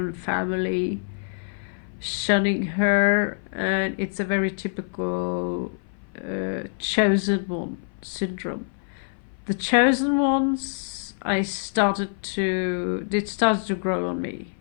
family shunning her, and it's a very typical chosen one syndrome. The chosen ones, it started to grow on me,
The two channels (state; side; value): silent; right; 56 dB below the other